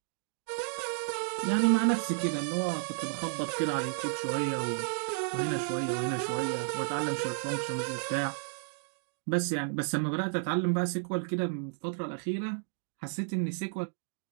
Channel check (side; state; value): left; silent; 56 dB below the other